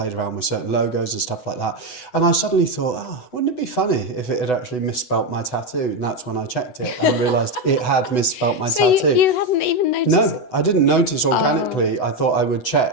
around with certain logos and stuff like that. And I suddenly thought, wouldn't it be funny if it had actually misspelt my tattoo? And that's when I checked it and realised it had misspelt my tattoo. You hadn't even noticed? No, I didn't notice organically. I thought I would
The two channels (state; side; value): late; right; 8.0 ms